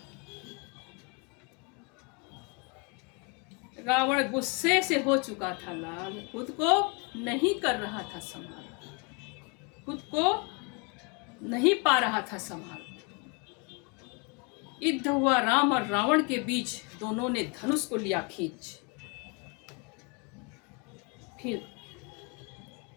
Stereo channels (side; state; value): right; quieter; 31.3 dB